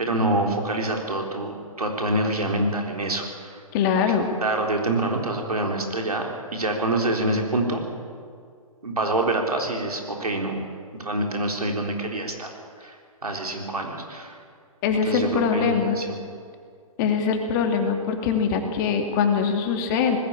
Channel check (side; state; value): both; normal; correlation -0.18